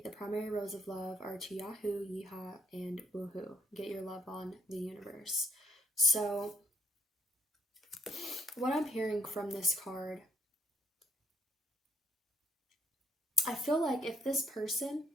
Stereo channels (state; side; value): normal; both; correlation 0.70